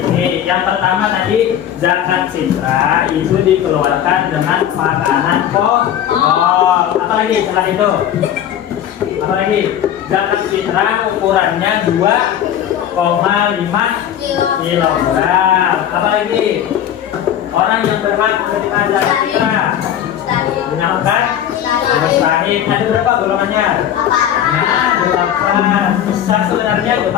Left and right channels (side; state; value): right; quieter; 10.3 dB